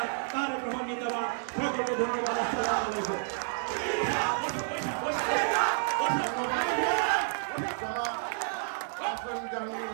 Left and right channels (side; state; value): left; silent; digital silence